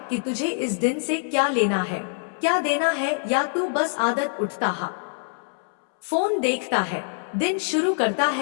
कि तुझे इस दिन से क्या लेना है, क्या देना है, या तू बस आदत उठता है, फोन देखता है, दिन शुरू करता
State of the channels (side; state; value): right; silent; 62 dB below the other